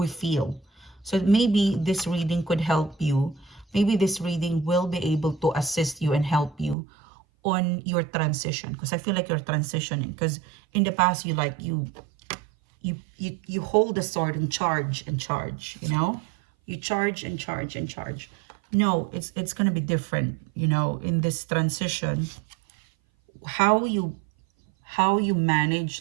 feel. So maybe this reading could help you. Maybe this reading will be able to assist you and help you on your transition, because I feel like you're transitioning, because in the past you hold the sword and charge and charge, you charge and charge and charge. No, it's gonna be different, in this transition. How you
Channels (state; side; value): drops out; left; at 6.8 s